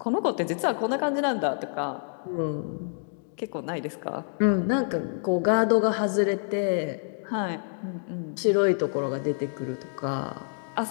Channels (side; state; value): right; silent; digital silence